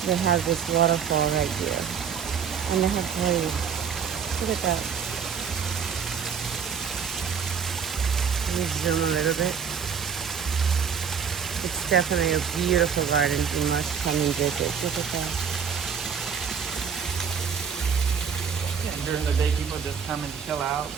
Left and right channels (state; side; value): quieter; left; 6.9 dB